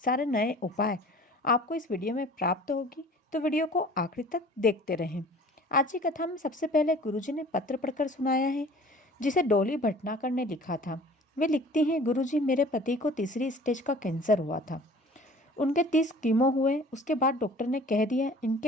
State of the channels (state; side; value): normal; both; correlation 0.47